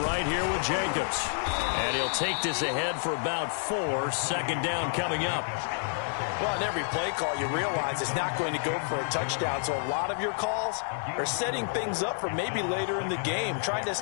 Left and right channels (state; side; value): silent; right; digital silence